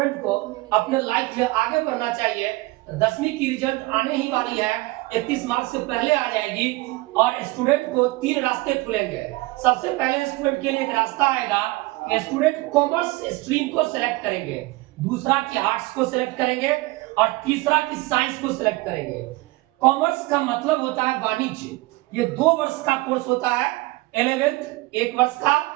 को अपने लाइफ में आगे बढ़ना चाहिए। 10वीं की रिजल्ट आने ही वाली है, 31 मार्च से पहले आ जाएगी और स्टूडेंट को 3 रास्ते खुलेंगे। सबसे पहले स्टूडेंट के लिए एक रास्ता आएगा कि स्टूडेंट कॉमर्स स्ट्रीम को सिलेक्ट करेंगे, दूसरा की आर्ट्स को सिलेक्ट करेंगे और तीसरा की साइंस को सिलेक्ट करेंगे। कॉमर्स का मतलब होता है वाणिज्य। ये 2 वर्ष का कोर्स होता है, 11th 1 वर्ष का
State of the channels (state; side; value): quieter; left; 21.4 dB